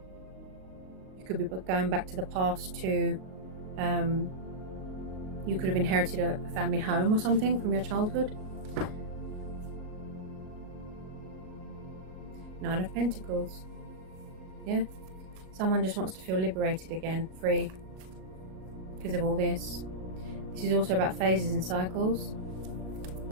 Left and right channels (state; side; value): late; left; 38 ms